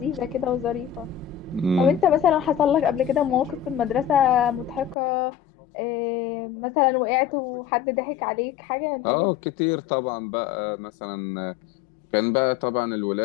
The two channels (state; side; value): drops out; right; at 5.0 s